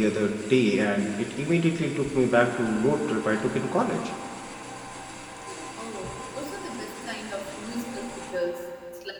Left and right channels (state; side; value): identical; both; correlation 1.00